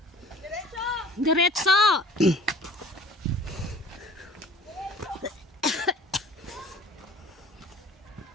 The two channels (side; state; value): both; normal; correlation 0.47